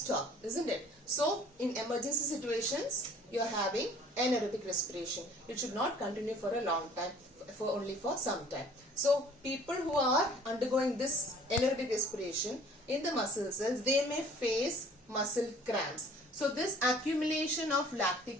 isn't it? So in emergency situations, you are having anaerobic respiration. It should not continue for a long time, only for some time. So people who are undergoing this anaerobic respiration in the muscle cells, they may face muscle cramps. So this accumulation of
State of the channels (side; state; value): both; normal; correlation 0.53